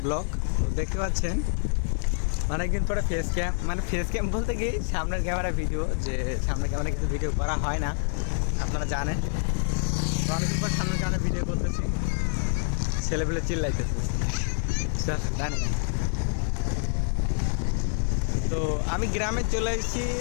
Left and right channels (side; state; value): right; silent; 60 dB below the other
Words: blog. দেখতে পাচ্ছেন অনেকদিন পরে ফেস ক্যাম বলতে গিয়ে সামনের ক্যামেরা ভিডিও, যে সামনের ক্যামেরা কিছু ভিডিও করা হয় না, আপনারা জানেন। তো অনেকদিন পর সামনের ক্যামেরা ভিডিও করতেছি, ছেলেপেলে চিল্লাইতেছে জানি। তো আমি গ্রামে চলে এসেছি।